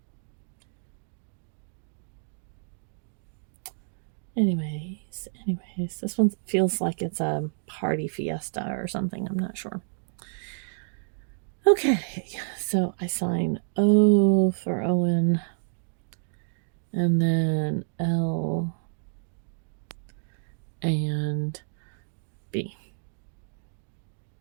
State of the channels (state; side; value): silent; left; digital silence